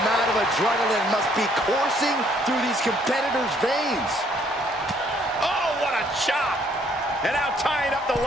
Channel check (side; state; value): both; normal; correlation 0.65